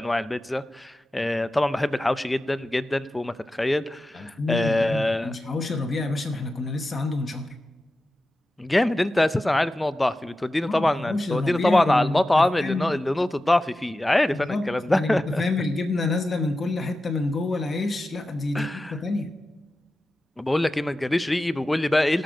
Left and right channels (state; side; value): normal; both; correlation 0.93